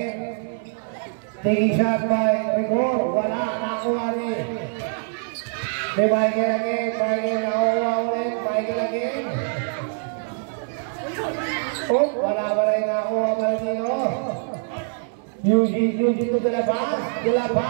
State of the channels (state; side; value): silent; left; 63 dB below the other